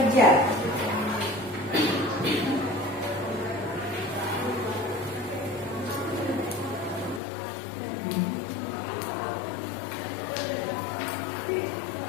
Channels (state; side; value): drops out; right; at 7.2 s